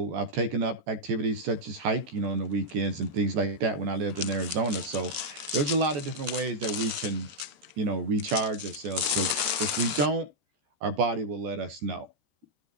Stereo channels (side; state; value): left; late; 13 ms